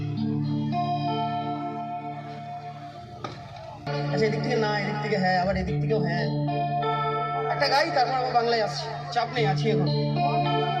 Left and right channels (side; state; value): both; identical; correlation 1.00